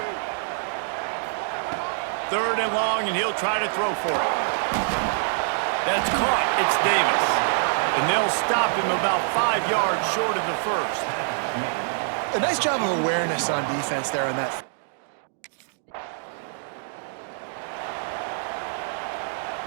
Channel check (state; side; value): silent; left; digital silence